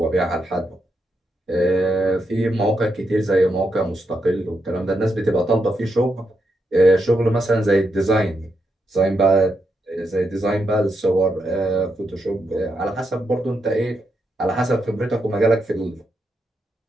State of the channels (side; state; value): both; normal; correlation 0.82